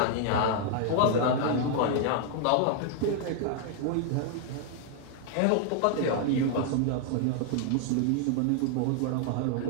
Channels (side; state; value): both; different; correlation 0.00